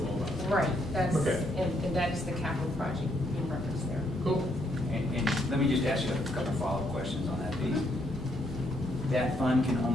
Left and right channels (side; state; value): both; normal; correlation 0.74